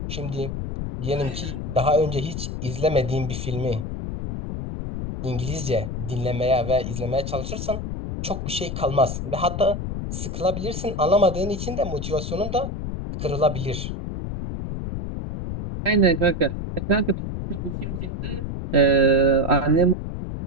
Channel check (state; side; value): noise; left; rumble, 5 dB below the sound